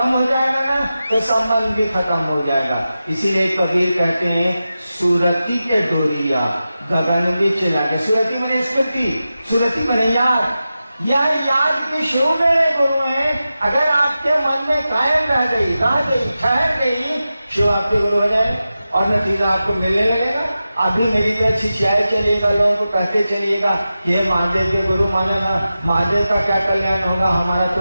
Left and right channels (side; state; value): both; inverted; correlation -0.93